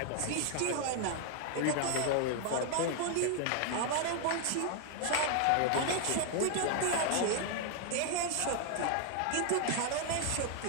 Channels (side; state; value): both; different; correlation -0.01